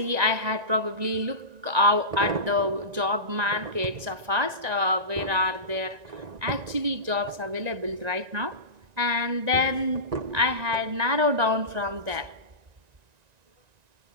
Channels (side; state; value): left; late; 1.9 ms